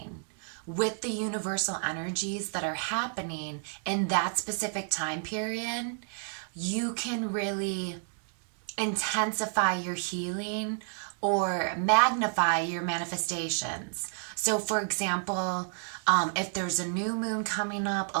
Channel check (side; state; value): left; silent; 57 dB below the other